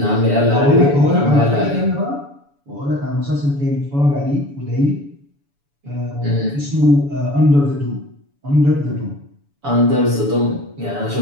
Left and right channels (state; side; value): late; left; 7.0 ms